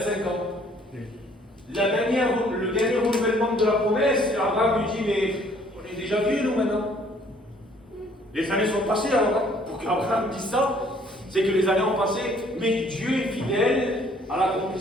ans. Le dernier renouvellement de la promesse, Abraham lui dit, mais on est déjà vieux nous maintenant. Les années sont passées alors, pour qu'Abraham dise ça, c'est que les années ont passé, mais Dieu est fidèle à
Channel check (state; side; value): normal; both; correlation 0.60